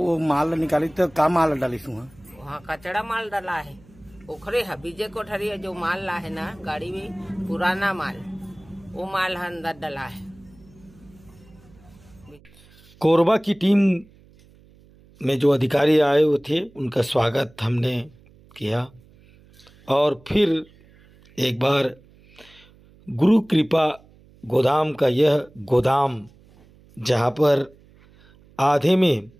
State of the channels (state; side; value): noise; right; hum, 27 dB below the sound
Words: माल निकाली तो का माल डाली वहाँ कचड़ा माल डाला है ओखरे है विजय कोठरिया जो माल ला है ना गाड़ी में पुराना माल वो माल अंदर डाला है। कोरबा की टीम में जो अधिकारी आए हुए थे उनका स्वागत हमने किया और फिर एक बार गुरु कृपा गोदाम का यह गोदाम जहाँ पर आधे में